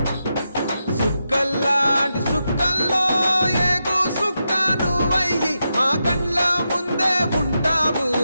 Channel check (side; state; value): both; inverted; correlation -0.87